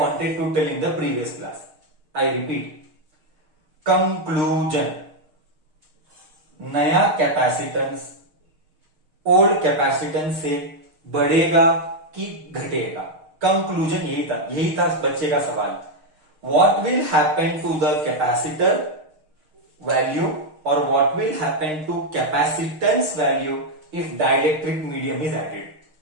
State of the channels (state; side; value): late; left; 6.5 ms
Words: wanted to tell in the previous class. I repeat. Conclusion. नया कैपेसिटेंस ओल्ड कैपेसिटेंस से बढ़ेगा कि घटेगा? कंक्लूजन यही था बच्चे का सवाल. What will happen to the capacitor value और what will happen to capacitance value if dielectric medium is added?